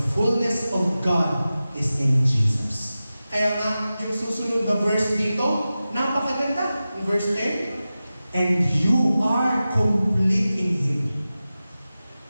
fullness of God is in Jesus. Kaya nga, yung susunod na verse dito, napakaganda. In verse 10, and you are complete in Him.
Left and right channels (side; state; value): both; inverted; correlation -0.95